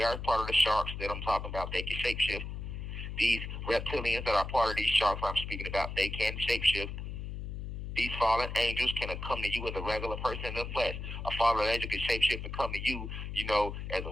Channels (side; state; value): left; noise; hum, 6 dB below the sound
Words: are part of the sharks that I'm talking about. They can shapeshift. These reptilians that are part of these sharks I'm speaking about, they can shapeshift. These fallen angels can come to you as a regular person in the flesh. A fallen angel can shapeshift and come to you, as